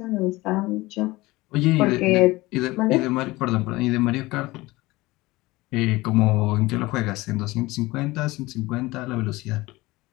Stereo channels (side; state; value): right; quieter; 20.4 dB